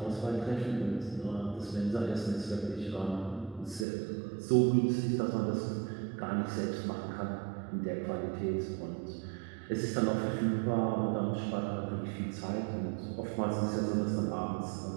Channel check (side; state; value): left; drops out; at 3.9 s